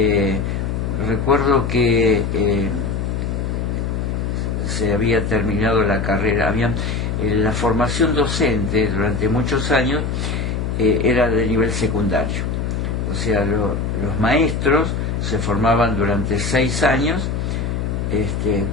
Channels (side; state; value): left; noise; hum, 1 dB below the sound